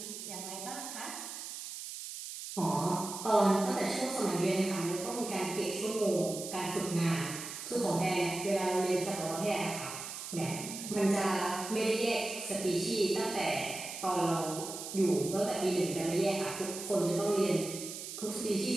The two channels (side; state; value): right; noise; hiss, 8 dB below the sound